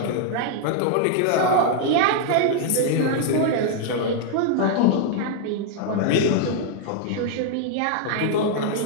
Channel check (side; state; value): both; different; correlation -0.01